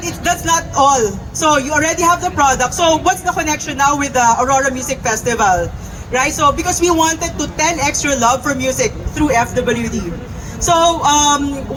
that's not all. So you already have the product. So what's the connection now with the Aurora Music Festival? Right? So because we wanted to 10x your love for music through FWD. So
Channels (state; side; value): identical; both; correlation 1.00